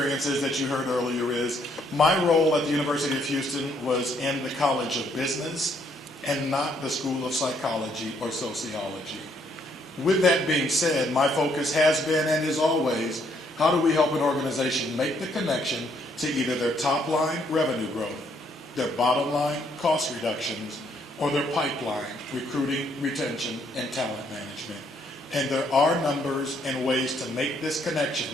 that you heard earlier is my role at the University of Houston was in the College of Business and not the School of Psychology or Sociology. With that being said, my focus has been and is always how do we help an organization make the connection to either their top line revenue growth, their bottom line cost reductions, or their pipeline recruiting, retention, and talent management. And there are numbers and ways to make this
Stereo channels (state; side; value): normal; both; correlation 0.70